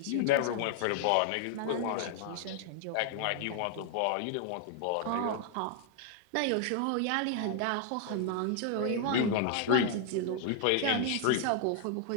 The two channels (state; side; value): different; both; correlation 0.00